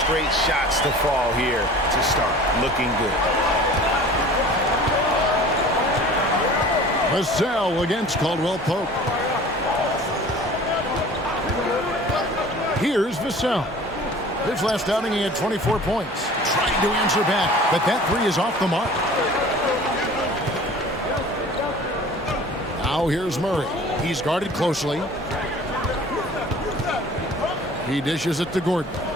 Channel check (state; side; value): normal; both; correlation 0.44